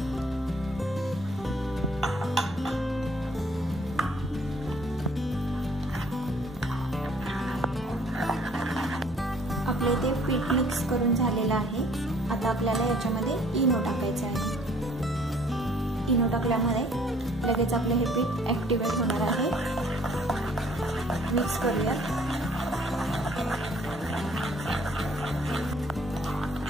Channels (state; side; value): normal; both; correlation 0.58